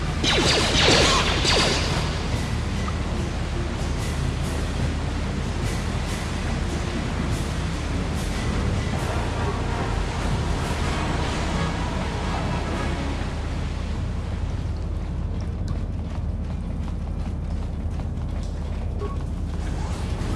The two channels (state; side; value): identical; both; correlation 1.00